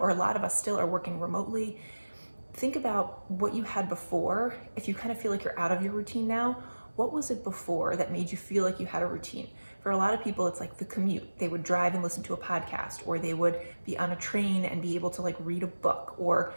or a lot of us still are working remotely, think about what you had before. If you kind of feel like you're out of your routine now, what was it before that made you feel like you had a routine? For a lot of people, it's like the commute. They would drive and listen to a podcast, or they would be on a train and be able to like read a book, or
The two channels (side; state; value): both; inverted; correlation -1.00